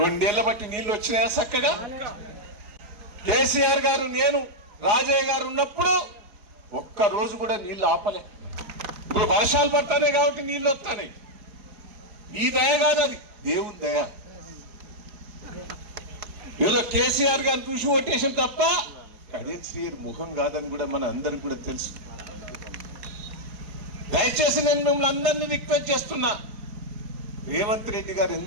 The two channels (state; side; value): late; left; 4.8 ms